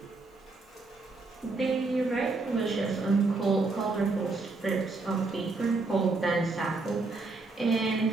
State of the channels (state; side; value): quieter; left; 3.6 dB